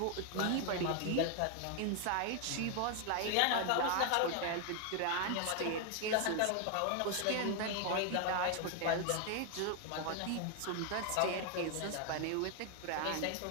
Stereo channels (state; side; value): different; both; correlation 0.00